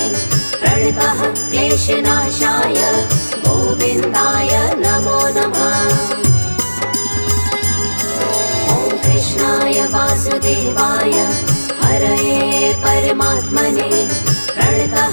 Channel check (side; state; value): both; inverted; correlation -1.00